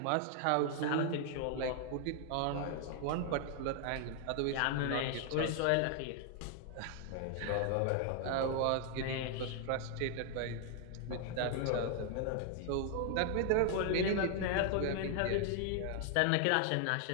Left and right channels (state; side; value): different; both; correlation 0.00